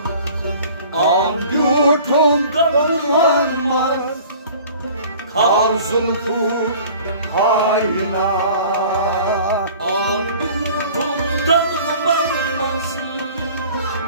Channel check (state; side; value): inverted; both; correlation -0.47